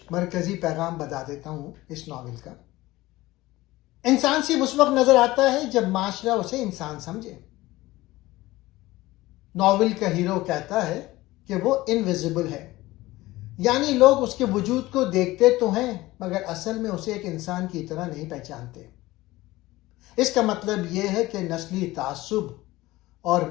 مرکزی پیغام بتا دیتا ہوں اس ناول کا. انسان صرف اس وقت نظر آتا ہے جب معاشرہ اسے انسان سمجھے. ناول کا ہیرو کہتا ہے کہ وہ انویزیبل ہے، یعنی لوگ اس کے وجود کو دیکھتے تو ہیں مگر اصل میں اسے ایک انسان کی طرح نہیں پہچانتے. اس کا مطلب یہ ہے کہ نسلی تعصب اور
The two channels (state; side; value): quieter; right; 18.4 dB